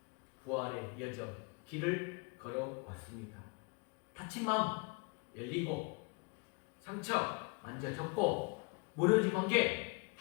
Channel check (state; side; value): quieter; right; 32.2 dB